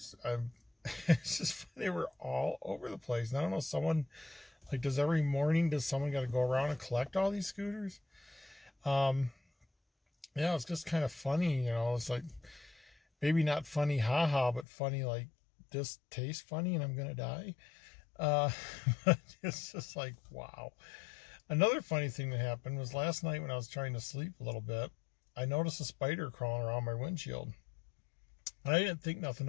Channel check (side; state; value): right; drops out; at 14.7 s